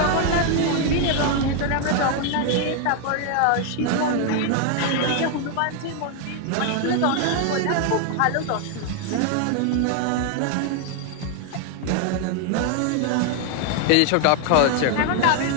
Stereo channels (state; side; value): different; both; correlation 0.00